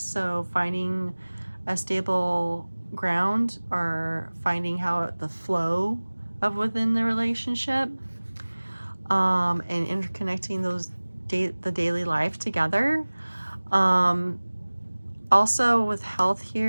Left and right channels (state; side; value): inverted; both; correlation -1.00